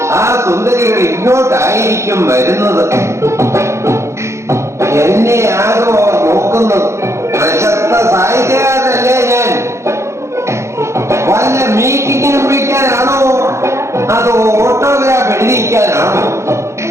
ആ സുന്ദരികൾ ഇങ്ങോട്ടായിരിക്കും വരുന്നത്. എന്നെ ആകോ നോക്കുന്നത്. പ്രശസ്ത സാഹിത്യകാരനല്ലേ ഞാൻ? വല്ല മീറ്റിങ്ങിനും വിളിക്കാനാണോ അതോ ഓട്ടോഗ്രാഫ് എഴുതിക്കാനാണോ?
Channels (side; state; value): left; late; 0.14 ms